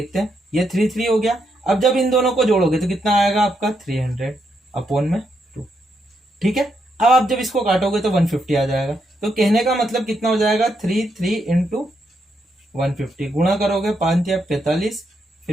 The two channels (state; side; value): normal; both; correlation 0.79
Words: हैं, ये 3 हो गया। अब जब इन दोनों को जोड़ोगे तो कितना आएगा आपका 300/2, ठीक है। अब आप जब इसको काटोगे तो 150 आ जाएगा। तो कहने का मतलब कितना हो जाएगा, 3 × 150 गुणा करोगे 5 या 45,